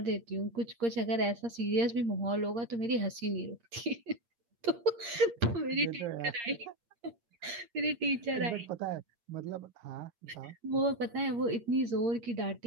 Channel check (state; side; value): late; left; 8.6 ms